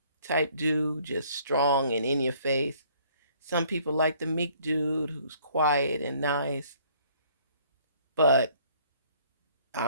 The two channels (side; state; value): both; inverted; correlation -0.60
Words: type dude, just strong and in your face. Some people like the meek dude who's quiet and nice. But